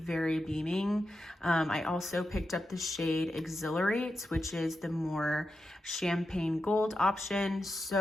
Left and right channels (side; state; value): both; normal; correlation 0.89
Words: beaming. I also picked up the shade Exhilarate, which is the more champagne gold option.